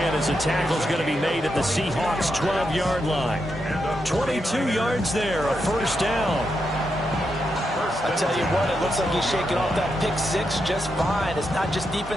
as the tackle's going to be made at the Seahawks' 12-yard line. 22 yards there, a first down. I tell you what, it looks like he's shaking off that pick six just fine. It's not just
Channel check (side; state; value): both; normal; correlation 0.84